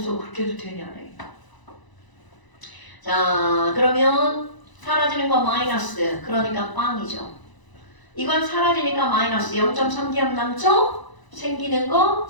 그렇게 해도 되냐네. 자, 그러면 사라지는 거 마이너스. 그러니까 빵이죠. 이건 사라지니까 마이너스 0.3기압 남죠? 생기는 거.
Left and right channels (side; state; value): right; late; 1.0 ms